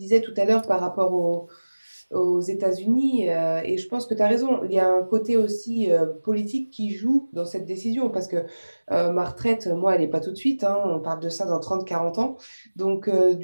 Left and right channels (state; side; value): inverted; both; correlation -1.00